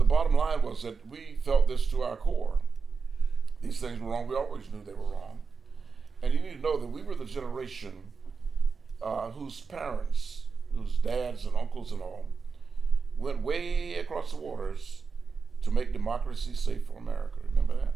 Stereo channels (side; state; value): left; quieter; 5.1 dB